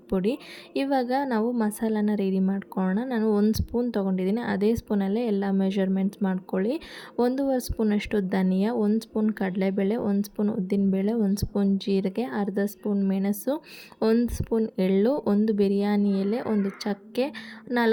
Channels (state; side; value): identical; both; correlation 1.00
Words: ಇವಾಗ ನಾವು ಮಸಾಲಾನ ರೆಡಿ ಮಾಡ್ಕೊಳ್ಳೋಣ. ನಾನು 1 ಸ್ಪೂನ್ ತೊಗೊಂಡಿದ್ದೀನಿ. ಅದೇ ಸ್ಪೂನಲ್ಲೇ ಎಲ್ಲ ಮೆಷರ್ಮೆಂಟ್ಸ್ ಮಾಡ್ಕೊಳ್ಳಿ. 1.5 ಸ್ಪೂನಷ್ಟು ಧನಿಯಾ, 1 ಸ್ಪೂನ್ ಕಡಲೆಬೇಳೆ, 1 ಸ್ಪೂನ್ ಉದ್ದಿನಬೇಳೆ, 1 ಸ್ಪೂನ್ ಜೀರಿಗೆ, ಅರ್ಧ ಸ್ಪೂನ್ ಮೆಣಸು, 1 ಸ್ಪೂನ್ ಎಳ್ಳು, 1 ಬಿರಿಯಾನಿ ಎಲೆ, 1 ಚಕ್ಕೆ,